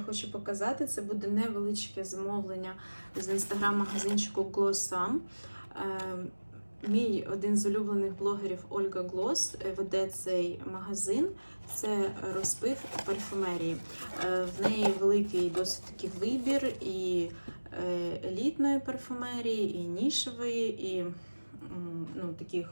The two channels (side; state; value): both; inverted; correlation -1.00